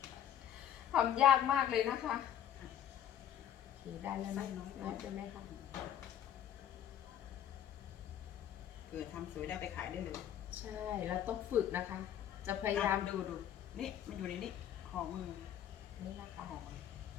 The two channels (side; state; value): right; quieter; 10.3 dB